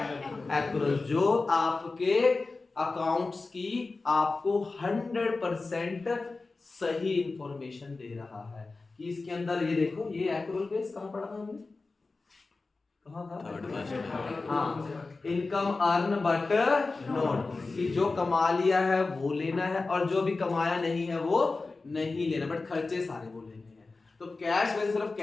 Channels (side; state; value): right; quieter; 3.7 dB